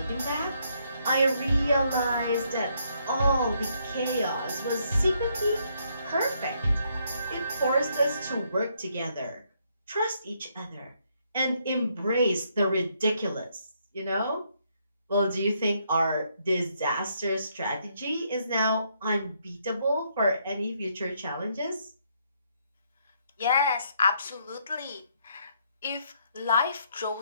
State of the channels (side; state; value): both; inverted; correlation -0.73